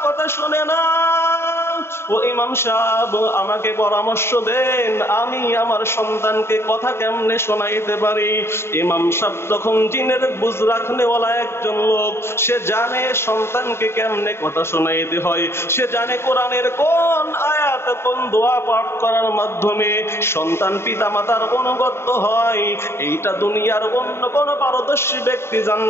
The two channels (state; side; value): late; right; 0.12 ms